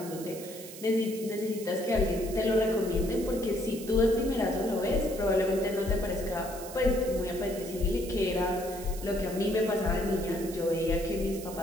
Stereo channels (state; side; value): noise; right; hiss, 14 dB below the sound